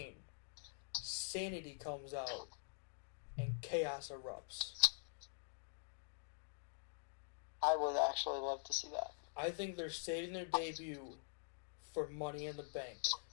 Sanity comes out and chaos erupts. I would actually love to see that. I think they're saving their debut for Money in the Bank,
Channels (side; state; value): right; silent; digital silence